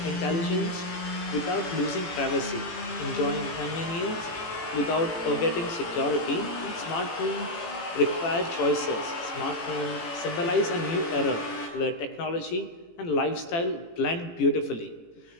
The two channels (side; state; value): right; late; 18 ms